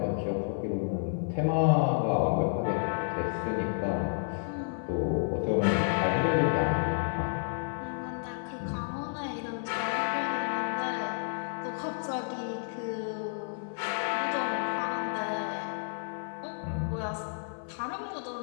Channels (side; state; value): right; silent; 56 dB below the other